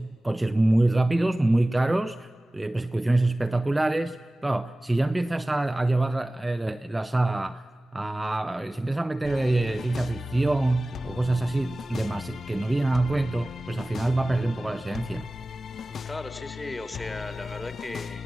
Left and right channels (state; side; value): normal; both; correlation 0.97